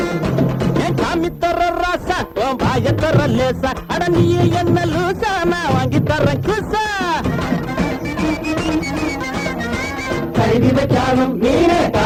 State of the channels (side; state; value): both; identical; correlation 1.00